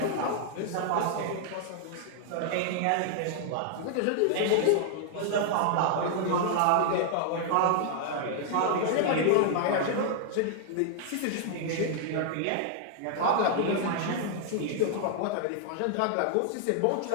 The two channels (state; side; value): different; both; correlation 0.00